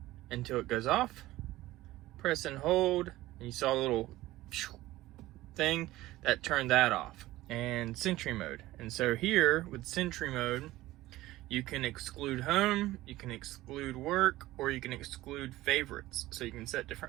until it goes off. Press and hold, and you saw a little thing that turned that off. And Sentry Mode. And so here with Sentry Mode, you can exclude home, you can exclude work, or you can exclude favorites. So you can set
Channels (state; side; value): quieter; left; 16.8 dB